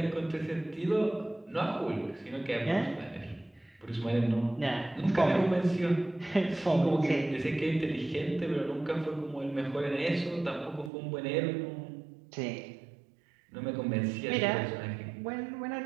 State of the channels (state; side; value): drops out; left; at 10.9 s